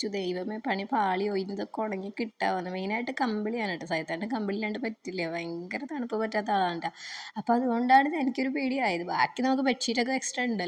ദൈവമേ പണി പാളിയോ, ഇതൊക്കെ ഉണങ്ങി കിട്ടാവുന്ന. മെയിനായിട്ട് കമ്പിളിയാണ് കേട്ടോ. സൈത്താൻ്റെ കമ്പിളില്ലാണ്ട് പറ്റില്ല, ഭയങ്കര തണുപ്പ് പറ്റാത്ത ആളാണ് കേട്ടോ. അപ്പോൾ അതുകൊണ്ടാണ് എനിക്കൊരു പേടിയായത്. ബാക്കി നമുക്ക് ബെഡ്ഷീറ്റൊക്കെ എക്സ്ട്രാ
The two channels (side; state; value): both; identical; correlation 1.00